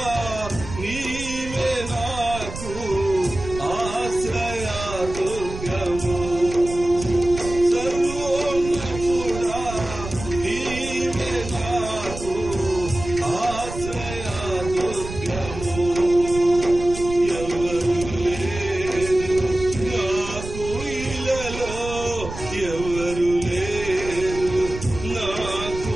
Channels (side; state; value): right; noise; rumble, 10 dB below the sound